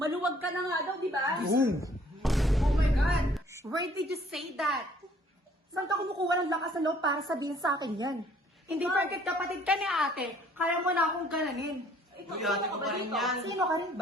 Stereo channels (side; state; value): both; normal; correlation 0.59